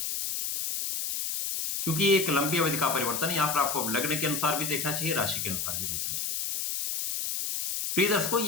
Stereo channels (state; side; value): noise; left; hiss, 2 dB below the sound